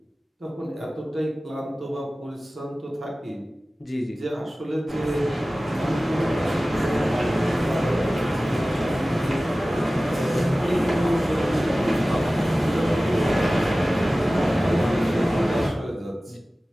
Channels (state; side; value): normal; both; correlation 0.97